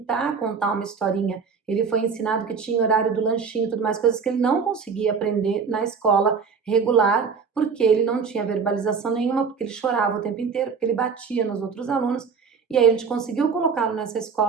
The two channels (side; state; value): left; quieter; 5.7 dB